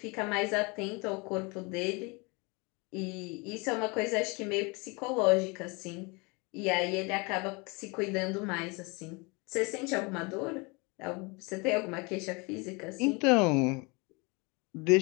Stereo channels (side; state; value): right; quieter; 28.5 dB